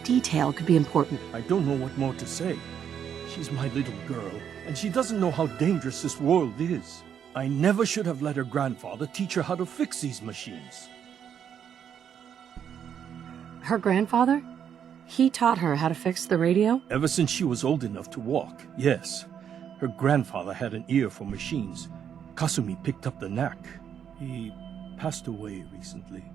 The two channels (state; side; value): quieter; left; 8.5 dB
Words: detail could be important. I don't know what more to say. She's my little girl, and she doesn't know how dangerous this world is. I never should have let her grandfather teach her how to fix these machines. Her grandfather? He taught her how to fix the radio? Ever since she was old enough to walk, yes. Her grandfather had an ear for machines. Kasumi picked up the knack. He passed away recently.